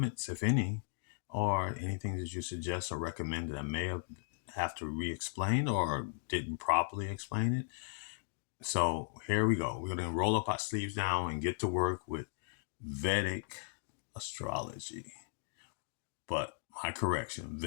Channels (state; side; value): silent; right; digital silence